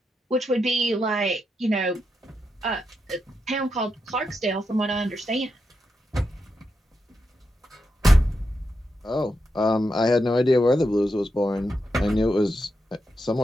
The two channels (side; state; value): both; normal; correlation 0.85